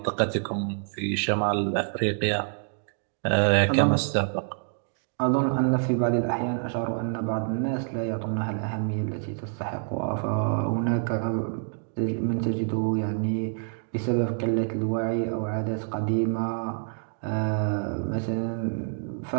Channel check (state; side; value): silent; left; digital silence